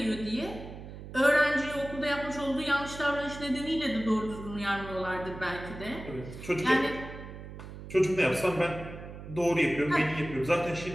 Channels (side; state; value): right; noise; hum, 12 dB below the sound